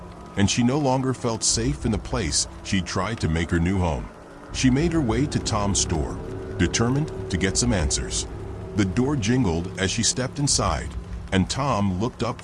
and she no longer felt safe in the place she'd tried to make her new home. She made her way to Tom's store, determined to get some answers. The door jingled as she stepped inside, and Tom looked up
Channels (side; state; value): both; identical; correlation 1.00